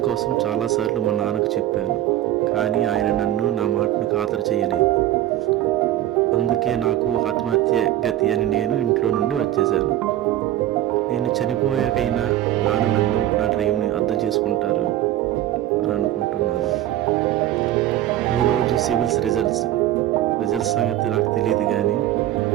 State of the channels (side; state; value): left; quieter; 13.6 dB